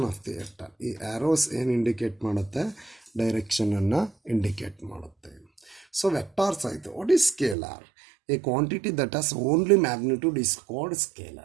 of the vector. ಈ arrows ಏನು indicate ಮಾಡುತ್ತೆ, ಡೈರೆಕ್ಷನನ್ನು indicate ಮಾಡುತ್ತೆ. So vectors ಆಯಿತು. What is scalar? A quantity that has only magnitude is called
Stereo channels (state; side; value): drops out; left; at 7.6 s